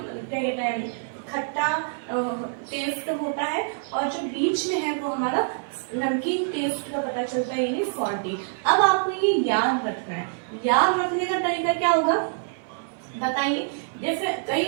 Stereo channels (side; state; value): left; silent; digital silence